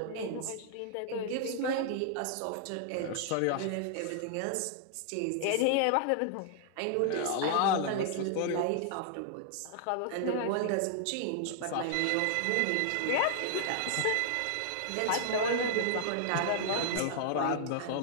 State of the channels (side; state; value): both; different; correlation -0.01